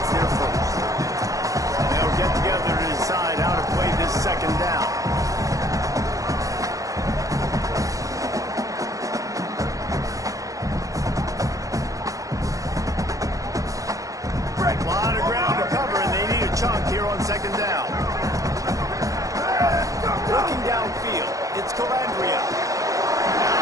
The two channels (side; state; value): left; late; 0.16 ms